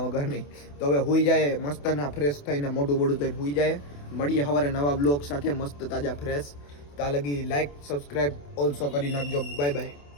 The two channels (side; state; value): right; late; 28 ms